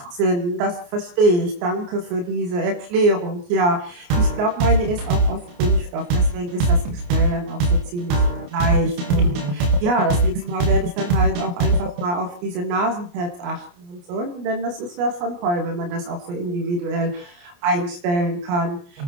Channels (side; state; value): left; late; 29 ms